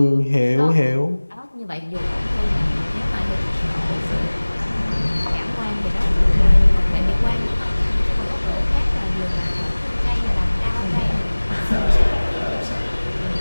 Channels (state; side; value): inverted; both; correlation -1.00